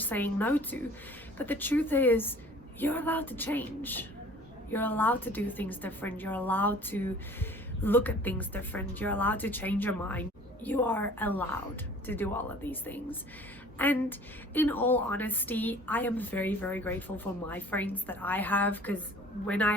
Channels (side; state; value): both; normal; correlation 0.49